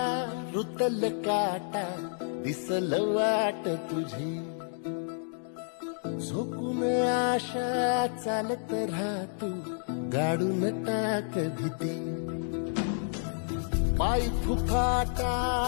रुतल काटा दिसल वाट तुझी झोकून आशा चालत राहतू गाडून टाक भीती पाय फुफाटा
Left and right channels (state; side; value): silent; right; digital silence